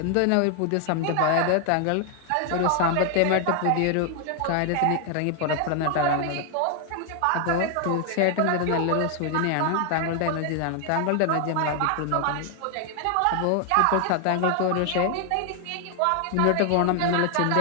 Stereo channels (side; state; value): both; different; correlation 0.00